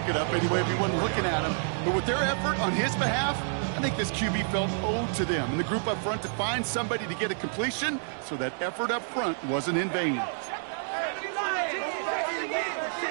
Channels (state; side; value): silent; left; digital silence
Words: it up anyway if he wasn't looking at him. But with their effort on his behalf, I think this QB felt owed to them and the group up front to find somebody to get a completion, so that effort up front wasn't in vain.